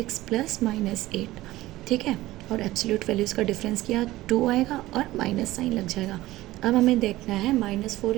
प्लस -8। ठीक है, और एब्सोल्यूट वैल्यूज़ का डिफरेंस किया 2 आएगा और माइनस साइन लग जाएगा। अब हमें देखना है -4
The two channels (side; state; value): left; quieter; 17.1 dB